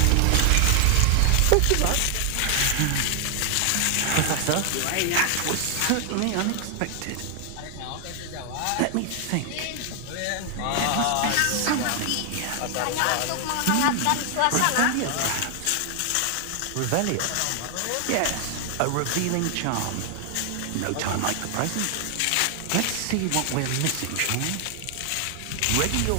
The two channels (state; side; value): different; both; correlation 0.00